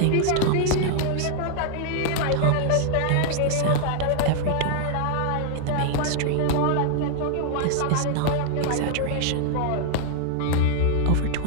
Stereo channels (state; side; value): different; both; correlation -0.01